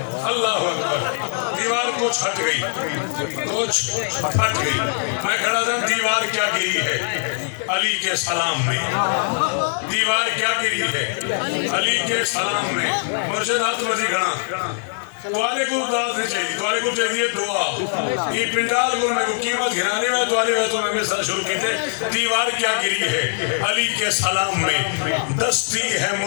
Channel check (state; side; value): silent; right; digital silence